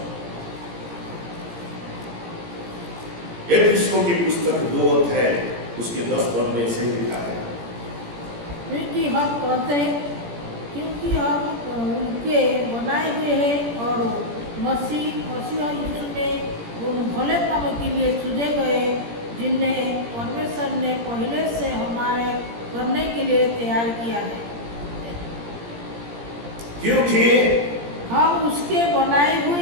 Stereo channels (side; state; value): left; late; 17 ms